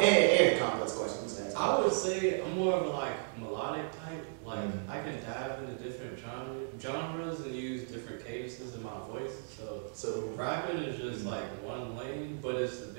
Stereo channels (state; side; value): silent; left; digital silence